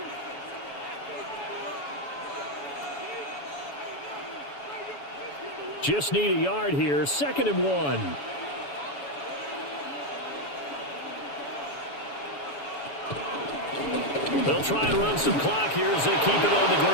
Just need a yard here. 2nd and 1. They'll try and run some clock here as they keep it on the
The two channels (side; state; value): right; late; 7.1 ms